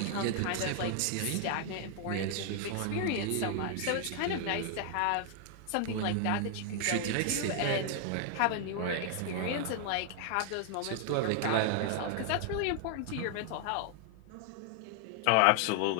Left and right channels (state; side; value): different; both; correlation 0.00